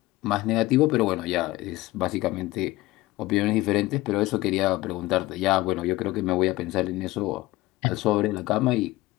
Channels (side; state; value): right; quieter; 18.8 dB